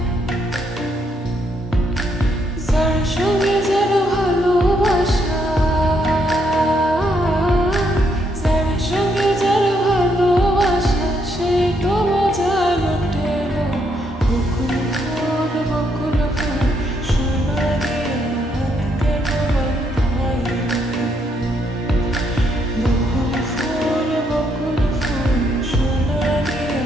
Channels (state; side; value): normal; both; correlation 0.74